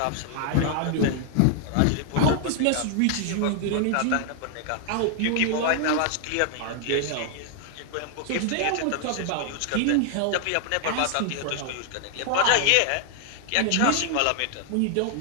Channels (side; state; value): both; different; correlation 0.00